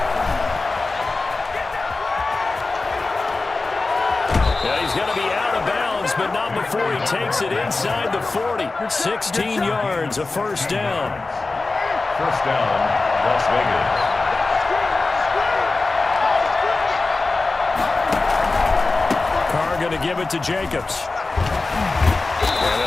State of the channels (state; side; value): quieter; right; 3.6 dB